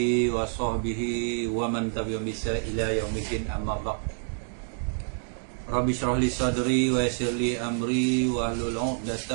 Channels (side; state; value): left; silent; digital silence